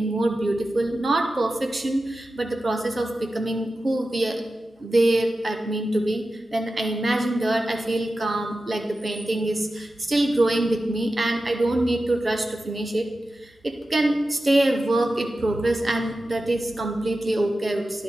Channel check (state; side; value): normal; both; correlation 0.93